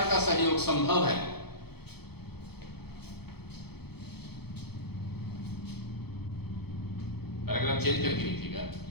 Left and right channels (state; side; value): late; right; 0.97 ms